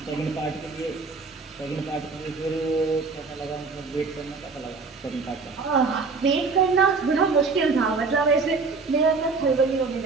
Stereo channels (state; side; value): quieter; left; 4.4 dB